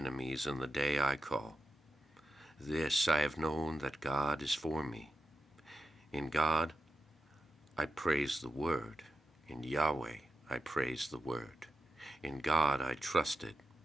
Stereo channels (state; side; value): normal; both; correlation 0.90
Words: in the day I call. This I have known, that God is for me. In God I praise the word. In Yahweh I praise the word. In God I trusted.